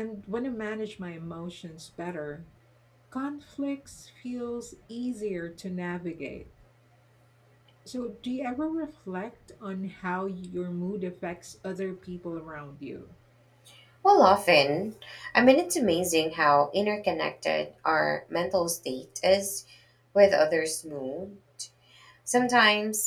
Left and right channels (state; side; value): identical; both; correlation 1.00